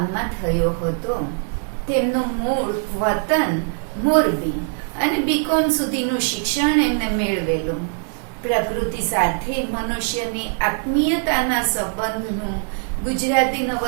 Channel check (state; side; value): silent; left; 58 dB below the other